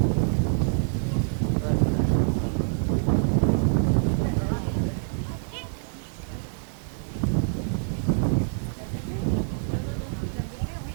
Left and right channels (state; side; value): silent; left; digital silence